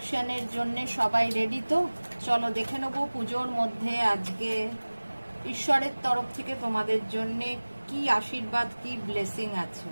জন্য সবাই রেডি তো? চলো দেখে নেবো পুজোর মধ্যে আজকে ঈশ্বরের তরফ থেকে তোমাদের জন্য কি আশীর্বাদ, কি ব্লেসিং আছে।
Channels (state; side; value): inverted; both; correlation -1.00